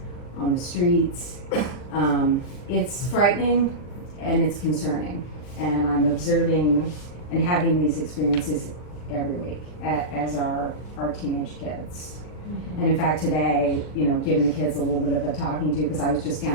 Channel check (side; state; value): right; late; 40 ms